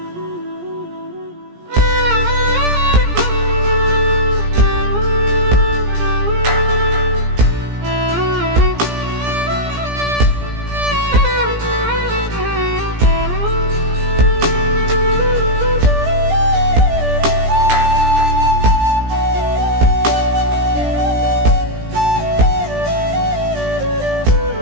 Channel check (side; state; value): left; late; 17 ms